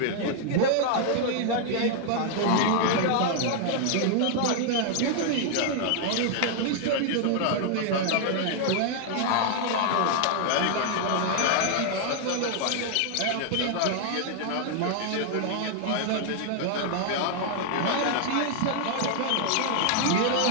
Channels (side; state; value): both; different; correlation 0.00